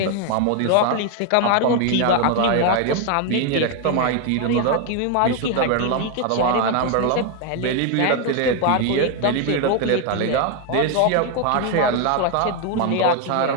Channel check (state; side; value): different; both; correlation 0.01